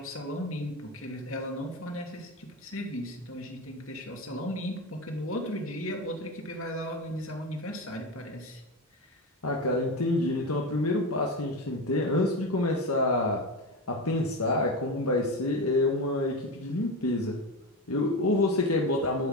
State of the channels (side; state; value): both; normal; correlation 0.19